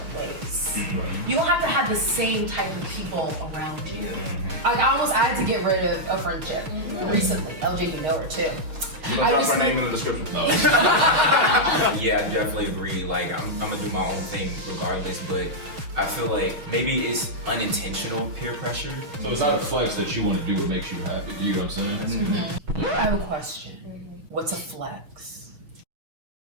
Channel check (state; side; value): late; left; 6.4 ms